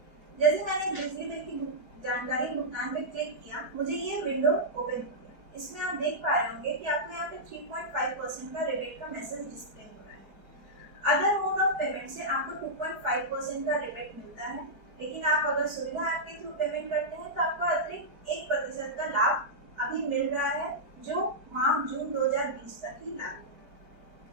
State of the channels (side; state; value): left; late; 4.7 ms